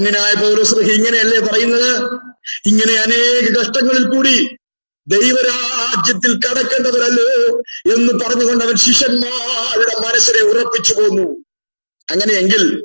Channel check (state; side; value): inverted; both; correlation -1.00